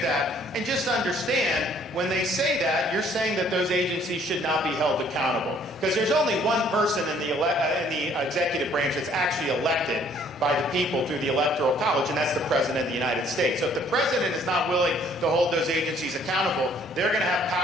that. And just understand, when they say that, you're saying that those agencies should not be held accountable. Because there's only one person in the executive branch that's actually elected by the people through the Electoral College, and that's the President of the United States. So if the President is not willing to hold those agencies accountable, they're going to have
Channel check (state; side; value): normal; both; correlation 0.60